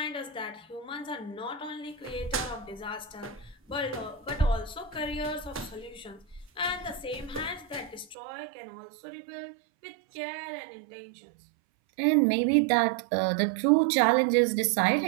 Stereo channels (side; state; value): left; drops out; at 8.2 s